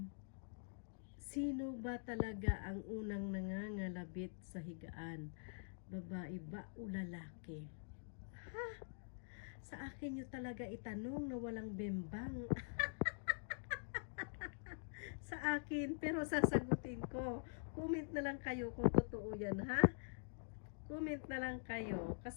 sino ba talaga ang unang nangangalabit sa higaan? Babae ba o lalaki? Ha? Sa akin nyo talaga itanong na walang bembang. Sa akin, pero sasagutin ko. Comment na lang kayo kung totoo yan, ha? Comment na lang kayo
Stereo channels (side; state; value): right; silent; digital silence